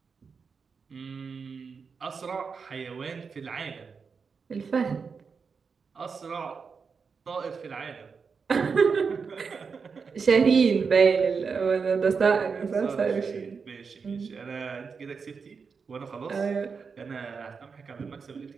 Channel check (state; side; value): quieter; left; 5.4 dB